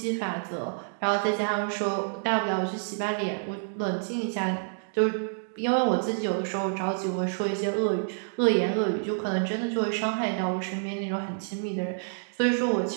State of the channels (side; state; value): left; silent; digital silence